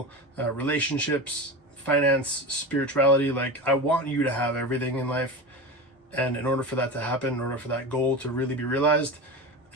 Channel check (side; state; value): both; normal; correlation 0.26